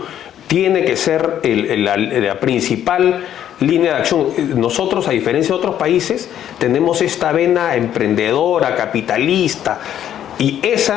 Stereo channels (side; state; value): right; quieter; 10.6 dB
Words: tiene que ser la principal línea de acción. Nosotros, a diferencia de otros países, tenemos esta vena emprendedora, capitalista, y